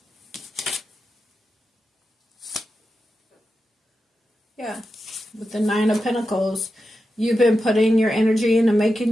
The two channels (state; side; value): normal; both; correlation 0.90